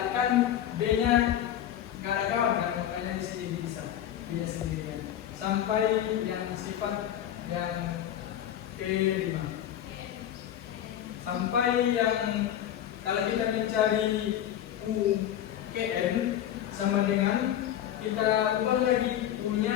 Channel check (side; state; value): right; quieter; 11.0 dB